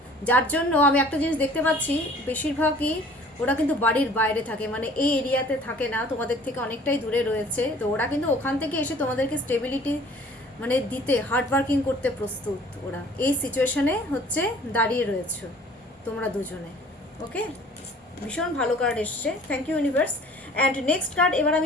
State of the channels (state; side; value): normal; both; correlation 0.51